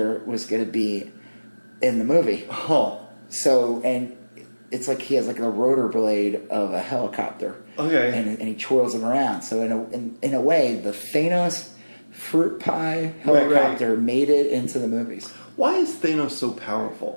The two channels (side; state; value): both; inverted; correlation -1.00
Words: was going to be in the movie. Oh. So, and it's like he has like a rotor blade of a helicopter. Okay. And he twirls them around. So in a way, the Thanos fruit pie helicopter made it into the movies. Why is Thanos so